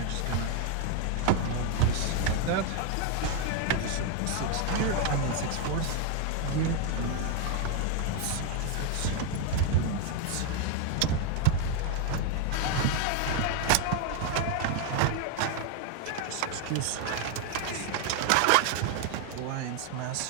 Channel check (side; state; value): both; different; correlation 0.01